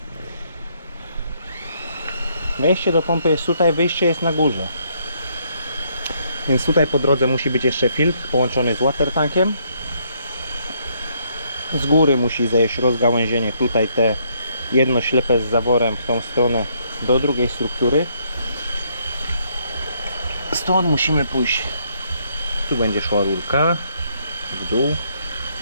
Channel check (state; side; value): inverted; both; correlation -0.70